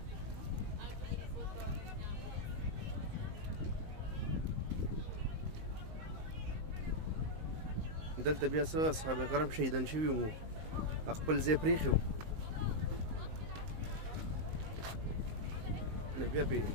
دلته بیا څه اصحاب کرام شهیدان شوي وو، خپل ځای پرېښی وو، نو بیا پرې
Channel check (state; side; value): late; left; 19 ms